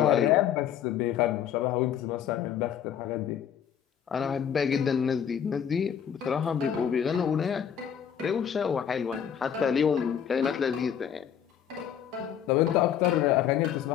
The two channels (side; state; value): right; quieter; 8.7 dB